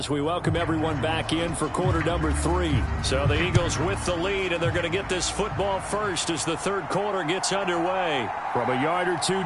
we welcome everyone back in for quarter number 3. So the Eagles with the lead, and they're going to get this football first as the 3rd quarter gets underway. From a yard or 2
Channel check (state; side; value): identical; both; correlation 1.00